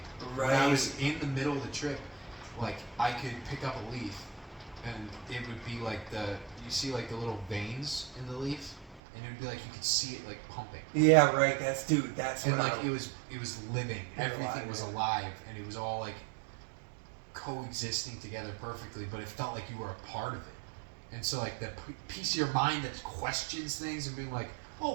Right. When I was in the middle of the trip, like I could pick up a leaf, and it would be like you see like the little veins in the leaf. And it would be like you could see it like pumping. Yeah, right. That's and like it was living. Everything was alive, and it was all like coexisting together perfectly. But it felt like you were a part of it. And so like the piece of your mind that questions things and being like, oh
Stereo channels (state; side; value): drops out; left; at 9.0 s